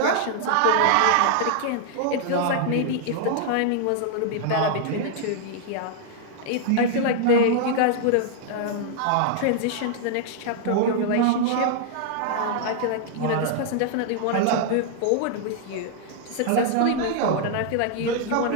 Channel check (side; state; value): both; different; correlation -0.01